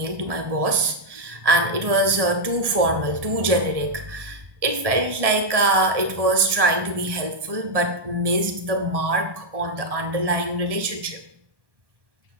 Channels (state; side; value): late; left; 1.1 ms